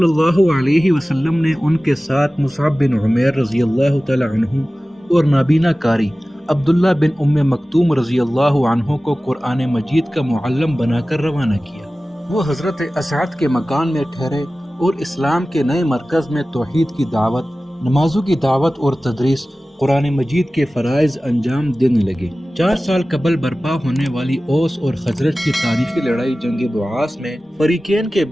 اللہ علیہ وسلم نے ان کے ساتھ مصعب بن عمیر رضی اللہ تعالی عنہ اور نابینا کاری، عبداللہ بن ام مکتوم رضی اللہ عنہ کو قرآن مجید کا معلم بنا کر روانہ کیا۔ وہ حضرت اسعد کے مکان میں ٹھہرے اور اسلام کے نئے مرکز میں توحید کی دعوت، نمازوں کی دعوت اور تدریس، قرآن مجید کے فرائض انجام دینے لگے۔ 4 سال قبل برپا ہونے والی اوس اور خزرج کی تاریخی لڑائی جنگ بعاث میں فریقین کے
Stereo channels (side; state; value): both; normal; correlation 0.96